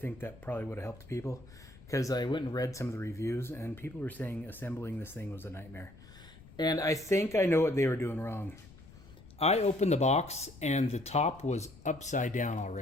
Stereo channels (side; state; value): left; noise; rumble, 20 dB below the sound